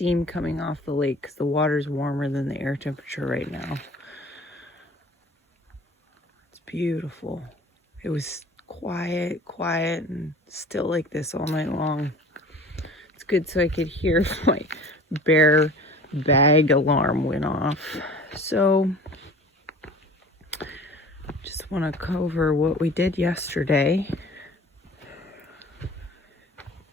coming off the lake because the water's warmer than the air temperature right now. It's beautiful. It was quiet, and still like this all night long. It's good so I could hear if my bear bag alarm went off. So just want to cover what we did yesterday.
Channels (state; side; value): normal; both; correlation 0.44